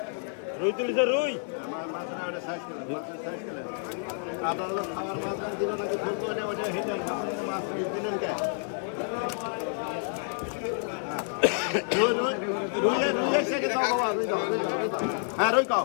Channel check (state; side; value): silent; right; 59 dB below the other